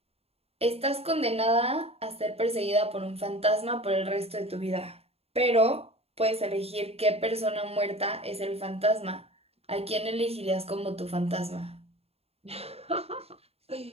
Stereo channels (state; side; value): late; left; 0.29 ms